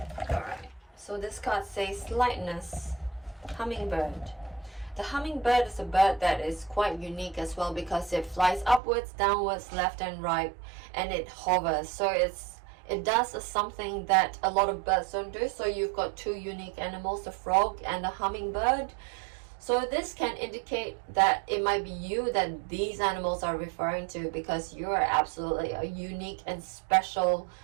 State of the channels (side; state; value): left; drops out; at 8.8 s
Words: Alright. So this card says lightness. Hummingbird. The hummingbird is a bird that is quite unique as well, because it flies upwards, downwards, left and right, and it hovers. So it does something that a lot of birds don't do. So you've got two unique animals, the frog and the hummingbird. So this can indicate that it might be you that these animals are referring to, because you are absolutely a unique and special